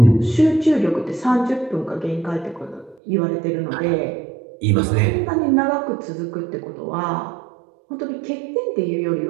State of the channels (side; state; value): left; drops out; at 3.0 s